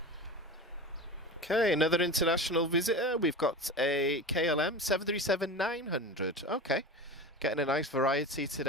Okay, another international visitor. We've got a KLM 737-900. Okay, getting a nice variety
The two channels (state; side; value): normal; both; correlation 0.30